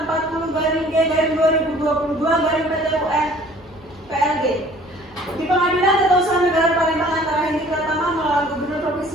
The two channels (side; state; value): both; normal; correlation 0.52